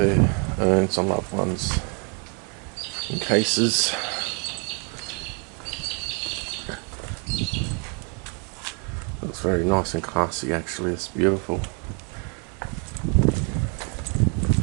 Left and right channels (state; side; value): quieter; left; 37.4 dB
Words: urns on loved ones in cases. Looks very nice and classy actually, it's beautiful.